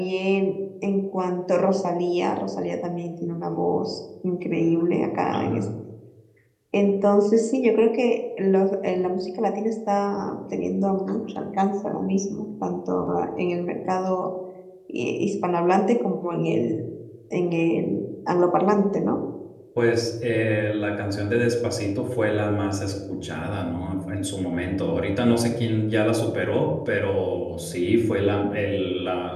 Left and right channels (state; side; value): identical; both; correlation 1.00